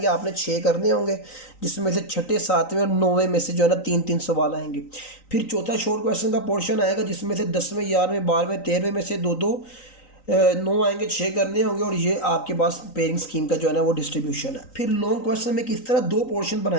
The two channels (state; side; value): late; right; 3.9 ms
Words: आपने 6 करने होंगे, जिसमें से छठे, सातवें और 9वें में से जो है ना 3 3 सवाल आएंगे। फिर चौथा शॉर्ट क्वेश्चन का पोर्शन आएगा, जिसमें से 10वें, 11वें, 12वें, 13वें में से दो दो 9 आएंगे, 6 करने होंगे। और ये आपके पास पेयरिंग स्कीम का जो है ना वो डिस्ट्रीब्यूशन है। फिर लॉन्ग क्वेश्चन में किस तरह दो पोर्शन